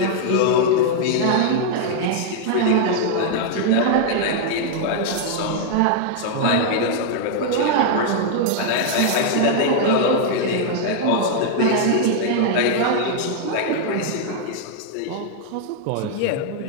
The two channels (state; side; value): different; both; correlation 0.00